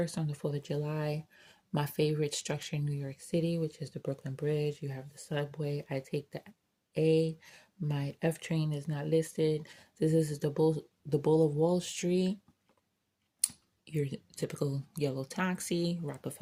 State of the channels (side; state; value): both; identical; correlation 1.00